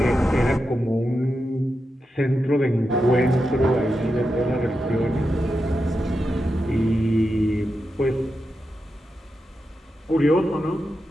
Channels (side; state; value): both; normal; correlation 0.88